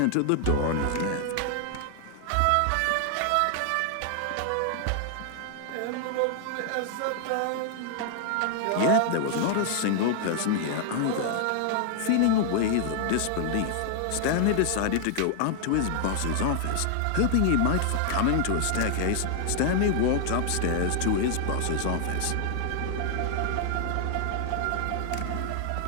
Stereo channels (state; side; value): different; both; correlation 0.00